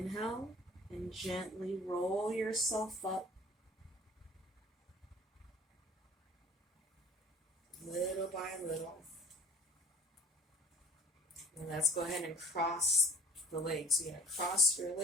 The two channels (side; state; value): both; normal; correlation 0.46